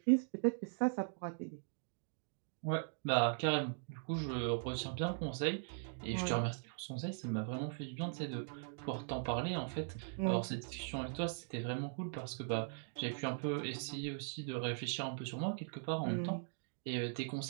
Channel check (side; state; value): left; silent; digital silence